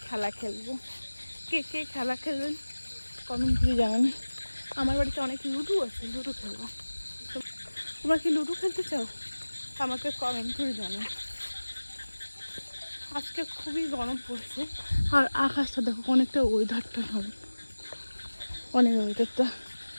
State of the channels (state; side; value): inverted; both; correlation -1.00